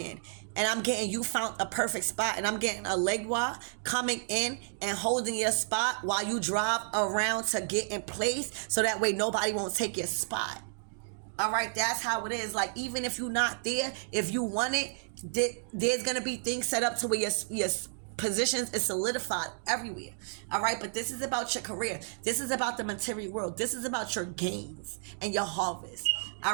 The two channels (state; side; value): silent; left; digital silence